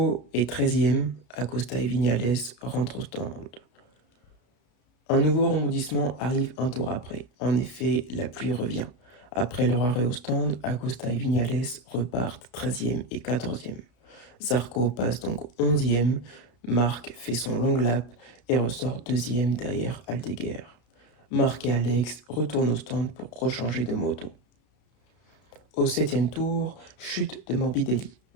est 13e, Acosta et Viñales rentrent au stand. Un nouveau rebondissement arrive un tour après. En effet, la pluie revient. Après leur arrêt au stand, Acosta et Viñales repartent 13e et 14e. Zarco passe donc 11e, Marc fait son long lap et ressort 2e derrière Aldeguer. Marc et Alex retournent au stand pour rechanger de moto. Au 7e tour, chute de Morbidelli.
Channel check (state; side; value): late; right; 33 ms